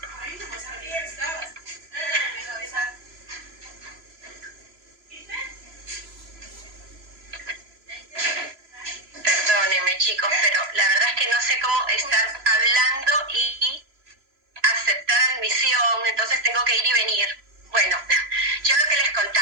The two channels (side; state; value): left; late; 3.0 ms